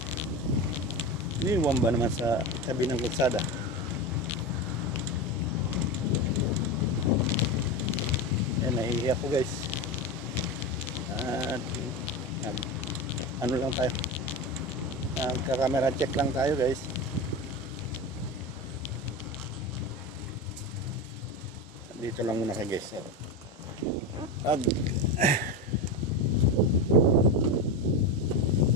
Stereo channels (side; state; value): both; normal; correlation 0.20